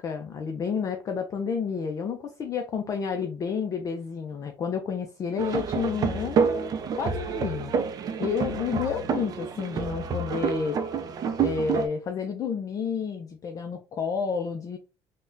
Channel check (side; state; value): both; normal; correlation 0.50